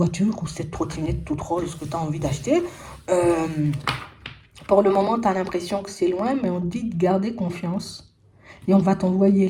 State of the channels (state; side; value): identical; both; correlation 1.00